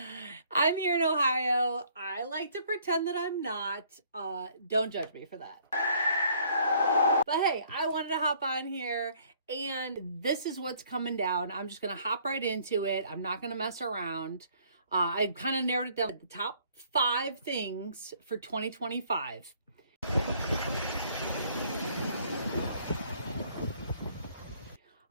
here in Ohio. I like to pretend that I'm not. Don't judge me for that. But hey, I wanted to hop on here and this is what's coming down. I'm just going to hop right into it. I'm not going to mess around. I kind of narrowed it down to the top 5 things for 2025.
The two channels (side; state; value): both; inverted; correlation -0.61